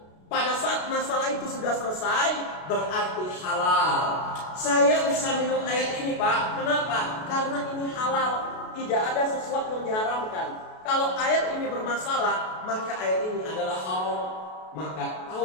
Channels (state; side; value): late; right; 32 ms